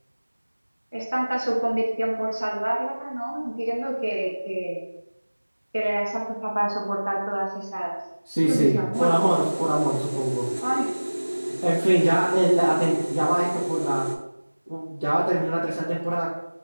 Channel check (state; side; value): inverted; both; correlation -1.00